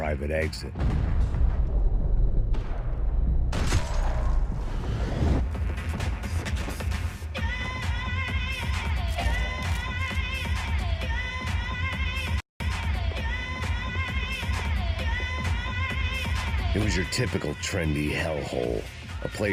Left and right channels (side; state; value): both; identical; correlation 1.00